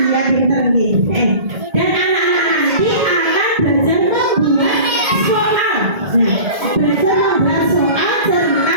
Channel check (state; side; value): late; left; 1.8 ms